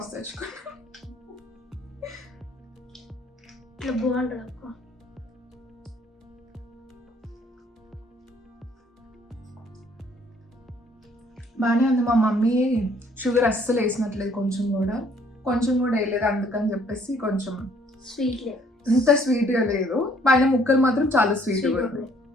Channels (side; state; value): both; normal; correlation 0.62